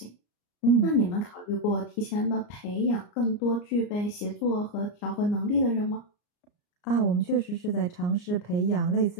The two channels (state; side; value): late; right; 34 ms